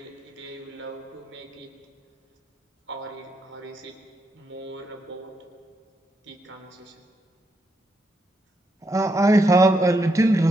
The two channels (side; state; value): both; normal; correlation 0.80